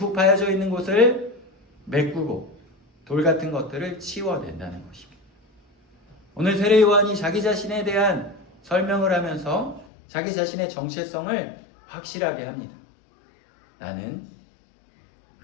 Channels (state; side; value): drops out; right; at 9.9 s